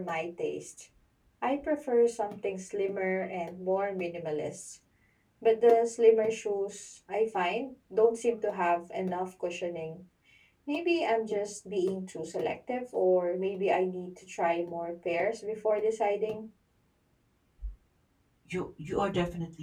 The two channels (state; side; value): identical; both; correlation 1.00